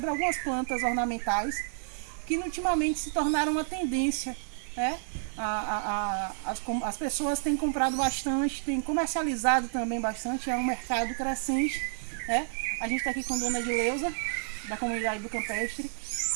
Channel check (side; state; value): left; silent; digital silence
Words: algumas plantas ornamentais que ultimamente se tornaram uma tendência. Né? As pessoas têm comprado bastante, têm comercializado também bastante, é um mercado crescente. Né? A gente está aqui com a dona Edileuza, da comunidade do Campestre,